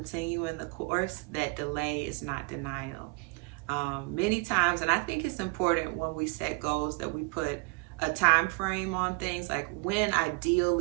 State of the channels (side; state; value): left; quieter; 30.1 dB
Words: the course, that delay is not denial. Many times, and I think it's important when we set goals that we put a time frame on things, like when